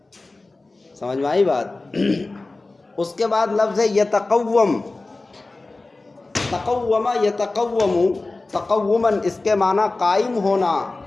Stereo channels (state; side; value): quieter; right; 3.3 dB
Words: سمجھ میں آئی بات؟ اس کے بعد لفظ یتقوم، تقوم یتقوم، تقوماً اس کے معنی قائم ہونا.